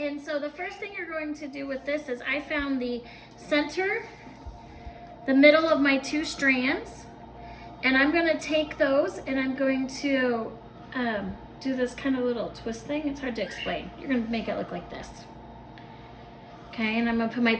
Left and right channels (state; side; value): identical; both; correlation 1.00